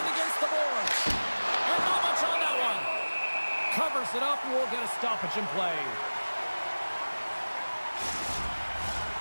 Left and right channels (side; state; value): both; inverted; correlation -1.00